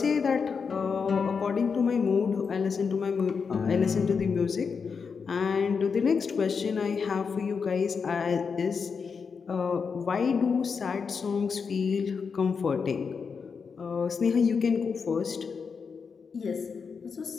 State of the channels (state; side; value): quieter; right; 5.7 dB